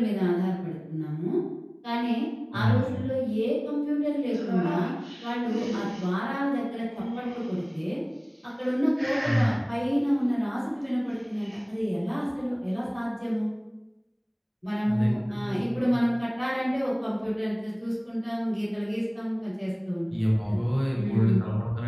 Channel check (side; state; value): both; identical; correlation 1.00